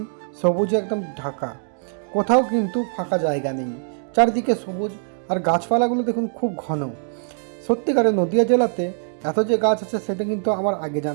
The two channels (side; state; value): left; silent; digital silence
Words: সবুজে একদম ঢাকা, কোথাও কিন্তু ফাঁকা জায়গা নেই। চারিদিকে সবুজ, আর গাছপালাগুলো দেখুন খুব ঘন। সত্যিকারে নদিয়া জেলাতে এত যে গাছ আছে সেটা কিন্তু আমার আগে